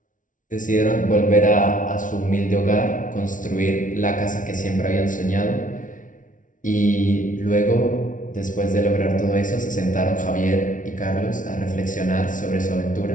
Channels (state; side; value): late; right; 0.38 ms